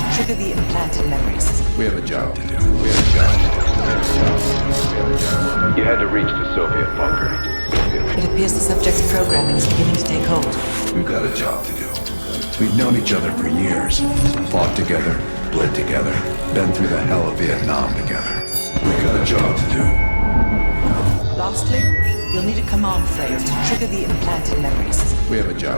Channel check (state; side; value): inverted; both; correlation -1.00